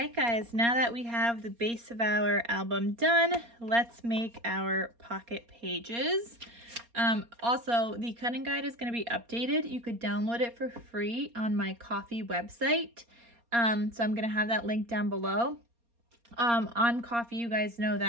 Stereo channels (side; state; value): left; late; 4.3 ms